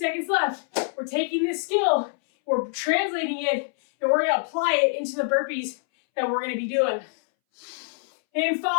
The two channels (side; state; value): right; silent; 62 dB below the other